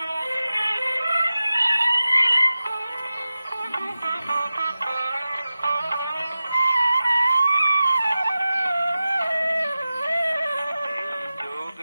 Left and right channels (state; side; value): inverted; both; correlation -0.95